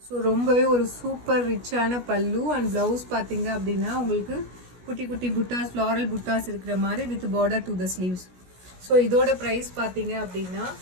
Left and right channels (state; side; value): late; left; 16 ms